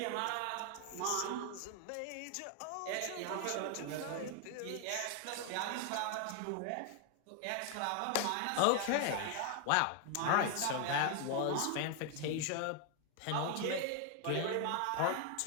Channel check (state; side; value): different; both; correlation 0.00